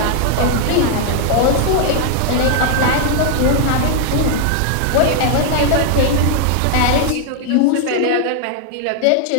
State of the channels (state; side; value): different; both; correlation 0.00